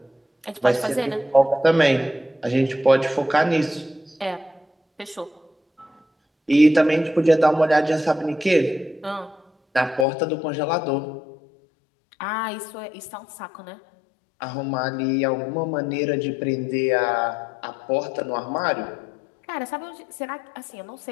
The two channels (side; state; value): right; drops out; at 10.1 s